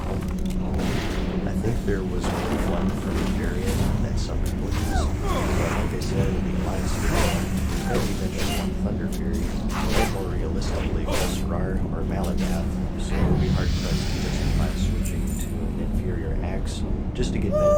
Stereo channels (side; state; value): both; identical; correlation 1.00